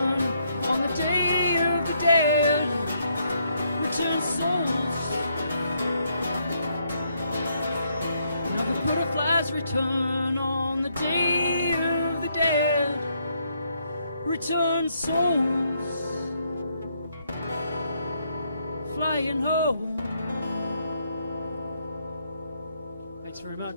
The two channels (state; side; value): inverted; both; correlation -0.74